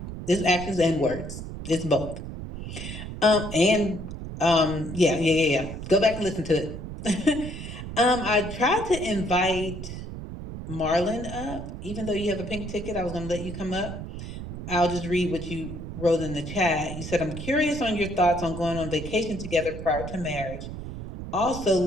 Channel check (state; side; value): noise; right; rumble, 9 dB below the sound